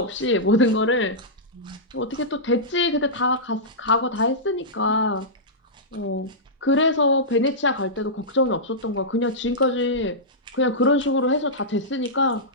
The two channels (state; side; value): normal; both; correlation -0.13